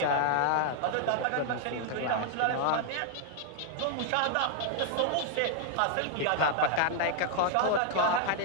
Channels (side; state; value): both; different; correlation 0.00